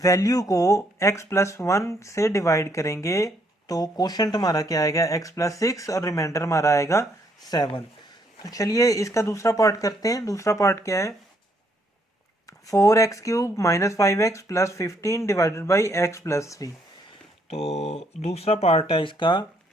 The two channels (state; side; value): normal; both; correlation 0.71